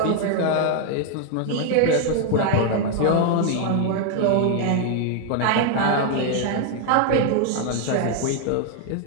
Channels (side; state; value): both; different; correlation 0.00